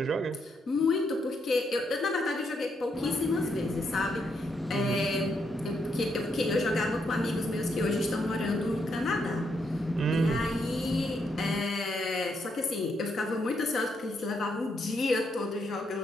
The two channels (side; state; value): both; normal; correlation 0.78